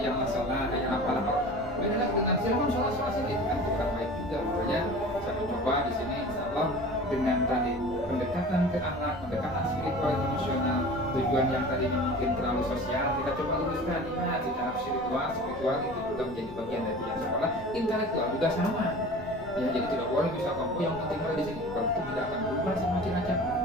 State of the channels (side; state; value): both; normal; correlation 0.39